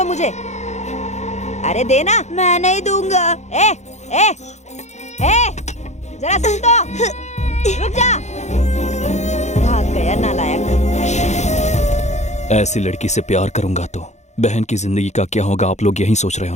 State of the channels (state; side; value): late; right; 0.33 ms